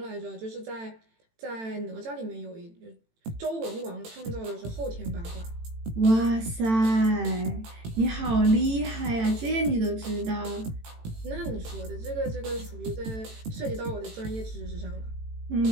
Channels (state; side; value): late; left; 18 ms